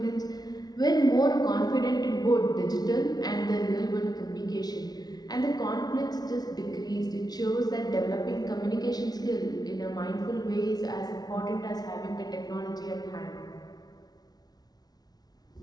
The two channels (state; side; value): late; right; 0.19 ms